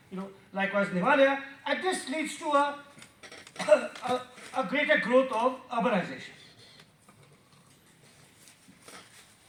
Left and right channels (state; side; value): identical; both; correlation 1.00